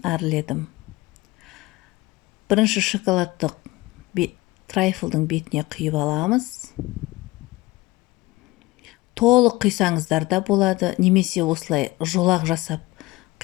әрледім. Бірінші шоколадтық трайфлдың бетіне құйып аламыз. Толық құйсаңыздар да болады, немесе осылай жолақ жасап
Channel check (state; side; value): quieter; right; 20.2 dB